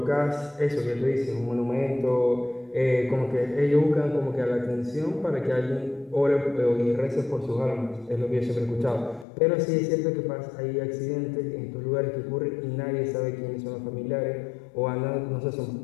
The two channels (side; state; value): right; drops out; at 9.2 s